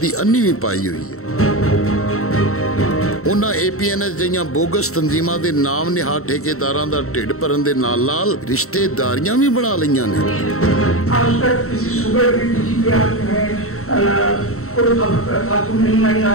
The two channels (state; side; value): late; right; 0.63 ms